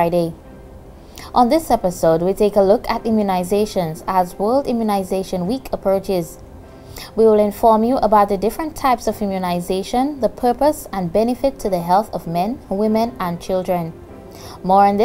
On this episode, we take a look at immunizations as World Immunization Week approaches. We will inform you about the different types of immunization, the purpose and benefit to the health of men, women and children. More on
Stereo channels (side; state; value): both; identical; correlation 1.00